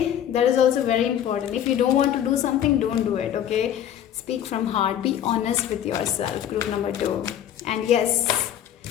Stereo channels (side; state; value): right; quieter; 10.4 dB